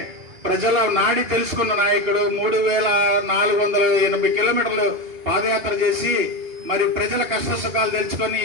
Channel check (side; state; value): left; late; 2.9 ms